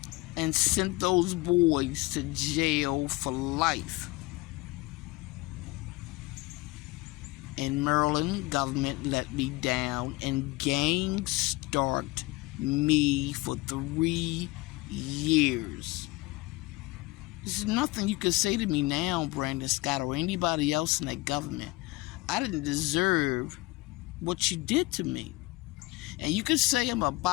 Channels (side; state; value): right; quieter; 21.9 dB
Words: and sent those boys to jail for life. And Maryland government let me down and gang-stalked me for 3 years. There's nothing you can say to me now, Brandon Scott, or anybody else in that government. I didn't deserve what you did to me. And you can say I'm a